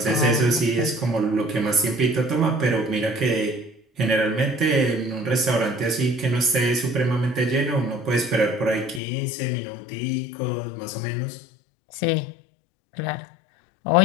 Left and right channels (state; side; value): drops out; right; at 9.0 s